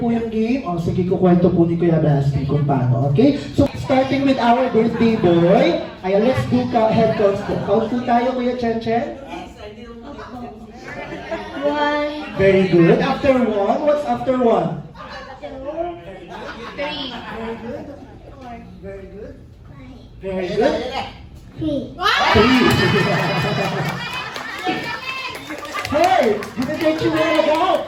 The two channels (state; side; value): identical; both; correlation 1.00